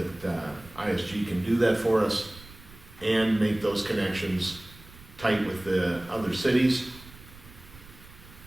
ISG can do that for us and make those connections tight with the other cities.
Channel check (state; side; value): noise; right; rumble, 20 dB below the sound